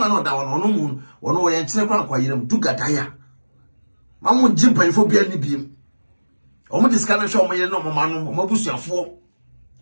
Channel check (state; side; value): inverted; both; correlation -1.00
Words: no da wono mu wono ye nkyere kwa yiram dugadaya mamu jimpanfo bia ni bi o mo diskana hwe o mo ye no mo manu o mo busuafo